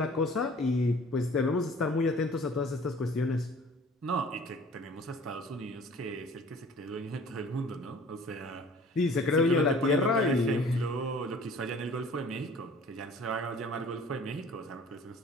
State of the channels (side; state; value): both; normal; correlation 0.49